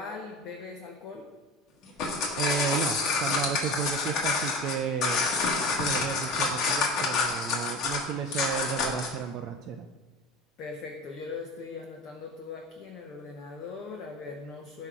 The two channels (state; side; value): normal; both; correlation 0.32